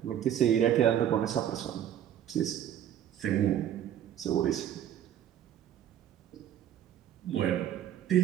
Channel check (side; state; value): left; quieter; 10.5 dB